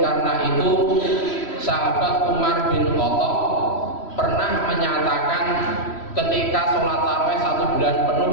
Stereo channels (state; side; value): late; right; 3.1 ms